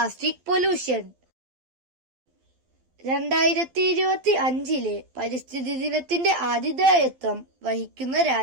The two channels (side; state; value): left; late; 12 ms